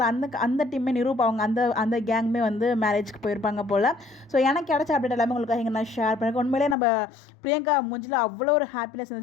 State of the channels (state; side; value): drops out; right; at 6.8 s